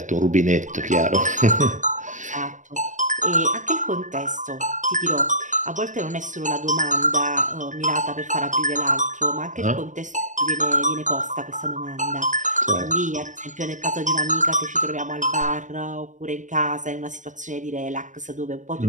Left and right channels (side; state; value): left; late; 0.36 ms